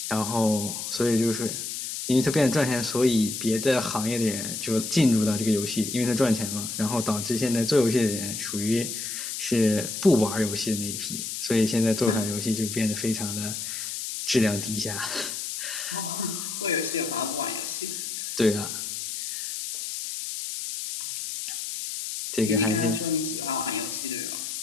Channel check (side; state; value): left; noise; hiss, 5 dB below the sound